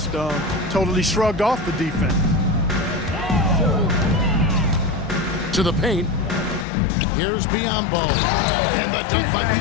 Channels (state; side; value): drops out; right; at 6.7 s